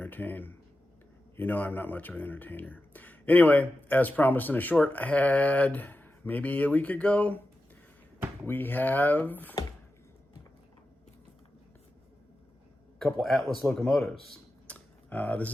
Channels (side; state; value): both; normal; correlation 0.92